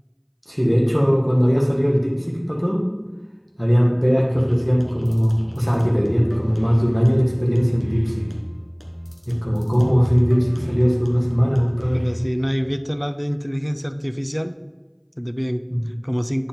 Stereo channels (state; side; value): identical; both; correlation 1.00